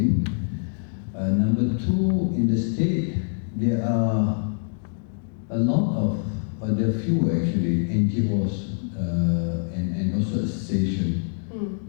Number two, in the state, there are a lot of, there are few actually, NGOs and also associations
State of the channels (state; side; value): silent; right; digital silence